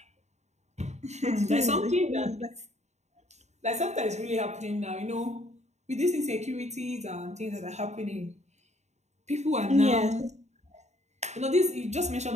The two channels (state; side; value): late; left; 0.33 ms